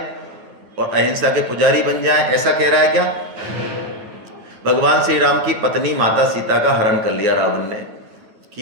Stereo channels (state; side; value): late; left; 9.3 ms